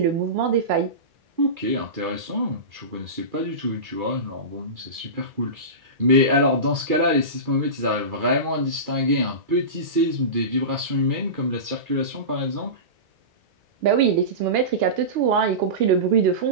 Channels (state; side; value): late; left; 2.4 ms